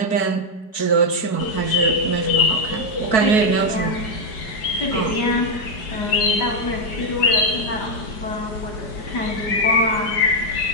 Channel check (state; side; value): late; right; 4.6 ms